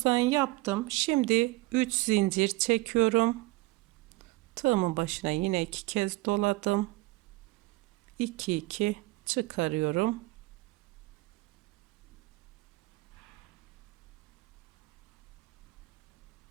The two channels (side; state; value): left; quieter; 20.9 dB